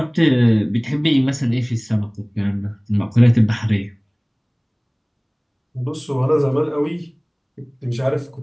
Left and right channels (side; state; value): both; identical; correlation 1.00